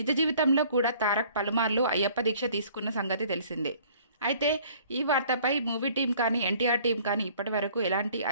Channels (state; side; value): inverted; both; correlation -0.54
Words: జీవితంలో కూడా తారక్ పలుమార్లు అయ్యప్ప దీక్ష తీసుకున్న సంగతి తెలిసిందే. అయితే ఈ వార్తపై మూవీ టీం కానీ ఎన్టీఆర్ టీం కానీ ఇప్పటి వరకు ఎలాంటి